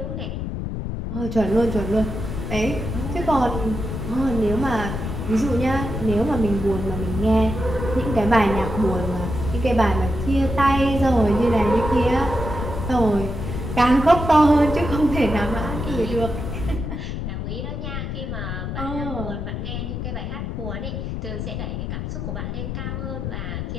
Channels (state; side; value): noise; left; rumble, 4 dB below the sound